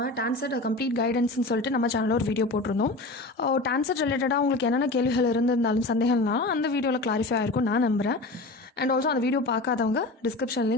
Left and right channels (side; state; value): right; quieter; 3.0 dB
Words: TANCET complete கைடன்ஸ்னு சொல்லிட்டு நம்ம சேனலில் ஒரு வீடியோ போட்டிருந்தோம். டான்செட் ரிலேட்டடாக உங்களுக்கு என்னென்ன கேள்விகள் இருந்திருந்தாலும் சந்தேகம்னாலும் அந்த வீடியோவில் கிளாரிஃபை ஆகிருக்கும் நான் நம்புகிறேன். அண்ட் ஆல்சோ அந்த வீடியோ பார்க்காதவங்க டிஸ்கிரிப்ஷன்